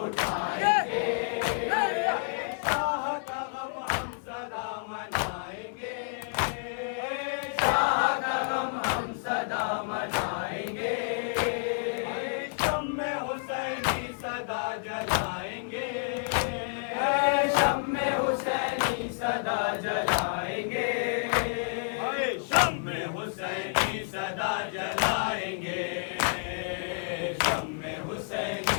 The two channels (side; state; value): right; silent; 58 dB below the other